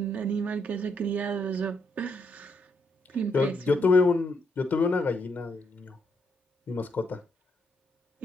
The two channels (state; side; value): normal; both; correlation 0.77